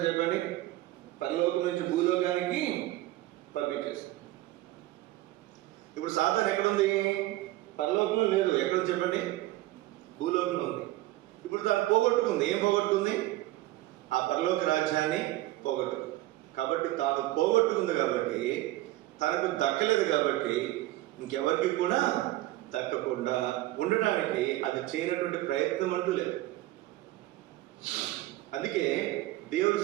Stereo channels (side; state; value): left; quieter; 16.9 dB